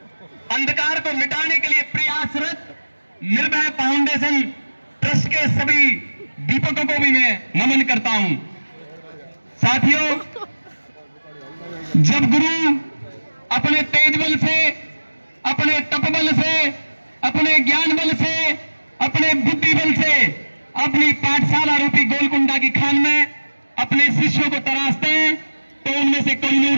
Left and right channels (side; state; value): both; inverted; correlation -1.00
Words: अंधकार को मिटाने के लिए प्रयासरत निर्भय फाउंडेशन ट्रस्ट के सभी दीपकों को भी मैं नमन करता हूं। साथियों, जब गुरु अपने तेज बल से, अपने तप बल से, अपने ज्ञान बल से, अपने बुद्धि बल से अपनी पाठशाला रूपी गोलकुंडा की खान में अपने शिष्यों को तराशते हैं तो उनमें से